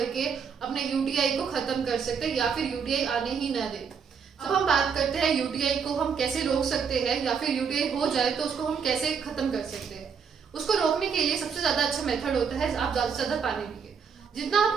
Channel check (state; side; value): quieter; left; 6.4 dB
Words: अपने यूटीआई को खत्म कर सकते हैं या फिर यूटीआई आने ही न दे। अब हम बात करते हैं यूटीआई को हम कैसे रोक सकते हैं या फिर यूटीआई हो जाए तो उसको हम कैसे खत्म कर सकते हैं। उसको रोकने के लिए सबसे ज्यादा अच्छा मेथड होता है आप ज्यादा से ज्यादा पानी पिए। जितना आप